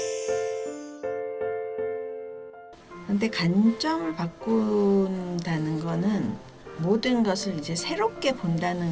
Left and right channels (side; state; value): both; identical; correlation 1.00